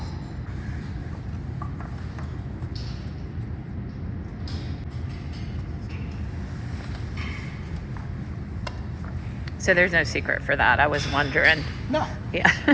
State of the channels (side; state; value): both; identical; correlation 1.00